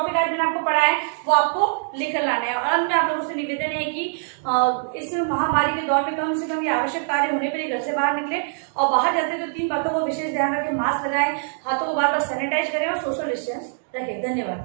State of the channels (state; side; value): silent; left; digital silence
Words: आज मैंने आपको पढ़ा है वो आपको लिख कर लाना है। और अंत में आप लोगों से निवेदन है कि इस महामारी के दौर में कम से कम ये आवश्यक कार्य होने पर ही घर से बाहर निकले, और बाहर जाते तो 3 बातों को विशेष ध्यान रखें। मास्क लगाएं, हाथों को बार बार सैनिटाइज करें और सोशल डिस्टेंस रखें।